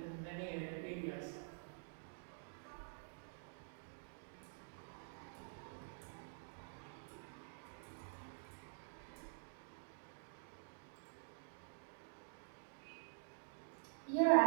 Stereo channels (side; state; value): left; silent; digital silence